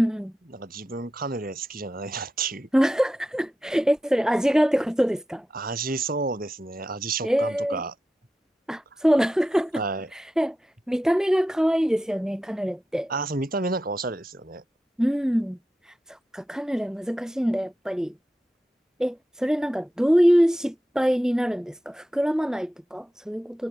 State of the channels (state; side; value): normal; both; correlation 0.91